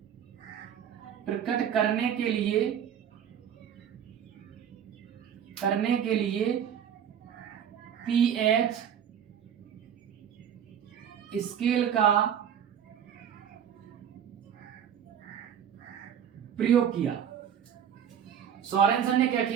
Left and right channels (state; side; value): quieter; left; 8.8 dB